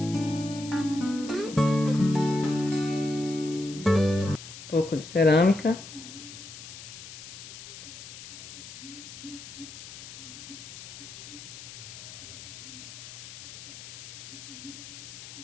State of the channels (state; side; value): noise; left; hiss, 13 dB below the sound